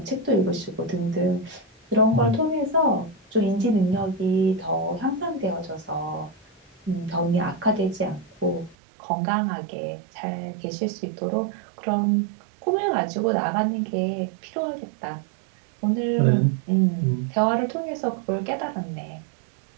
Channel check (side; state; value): left; drops out; at 8.8 s